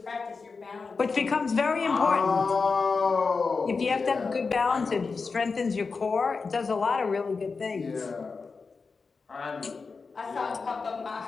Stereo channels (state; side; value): quieter; right; 4.6 dB